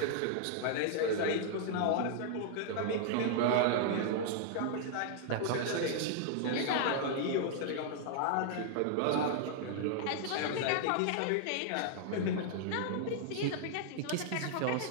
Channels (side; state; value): both; different; correlation -0.01